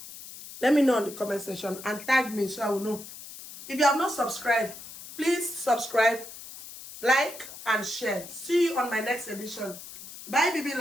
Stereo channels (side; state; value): left; noise; hiss, 14 dB below the sound